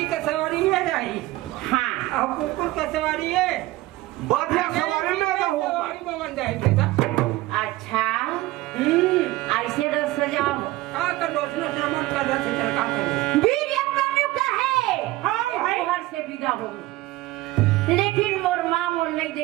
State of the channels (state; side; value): quieter; left; 18.1 dB